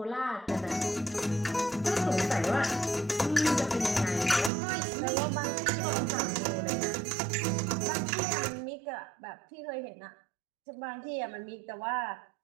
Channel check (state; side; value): drops out; left; at 4.5 s